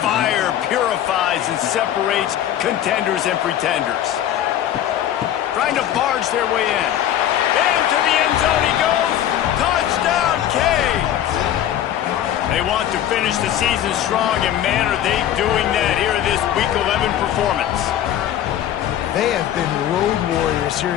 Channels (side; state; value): right; quieter; 11.2 dB